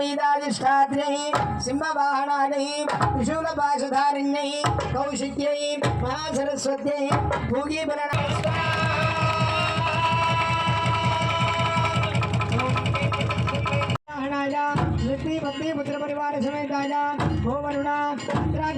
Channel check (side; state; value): both; identical; correlation 1.00